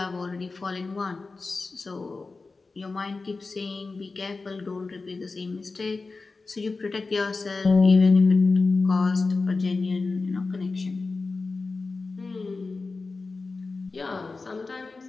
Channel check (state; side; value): quieter; right; 3.9 dB